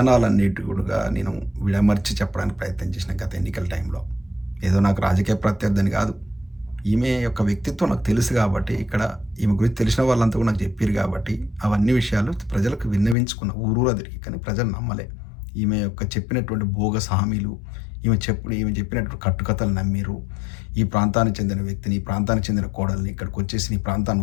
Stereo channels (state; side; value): drops out; right; at 13.2 s